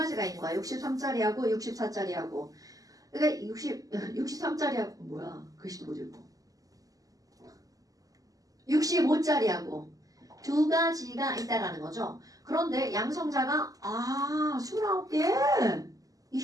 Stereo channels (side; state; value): left; late; 0.17 ms